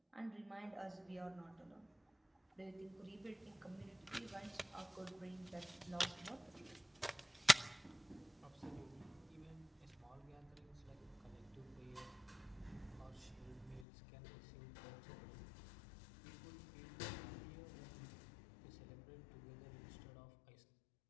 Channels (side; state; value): right; drops out; at 13.9 s